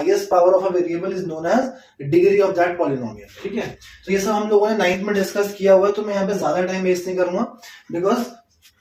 power of a variable is known as degree of that polynomial. ठीक है, तो ये सब हम लोगों ने 9th में डिस्कस किया हुआ है, तो मैं यहाँ पे ज्यादा टाइम वेस्ट नहीं करूंगा, बिकॉज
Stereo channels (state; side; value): identical; both; correlation 1.00